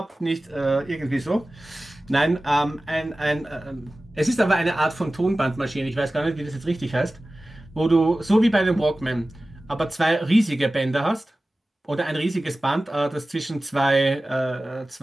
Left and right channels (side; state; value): both; normal; correlation 0.96